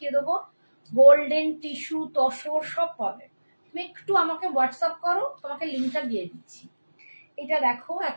দেবো। গোল্ডেন টিস্যু তসর সব পাবে, তুমি একটু আমাকে হোয়াটসঅ্যাপ করো, তোমাকে লিঙ্কটা দিয়ে দিচ্ছি। এটা দেখো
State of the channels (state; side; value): inverted; both; correlation -1.00